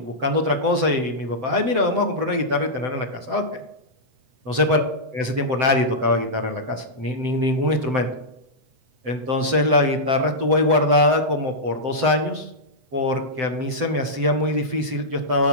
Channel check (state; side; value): late; left; 7.8 ms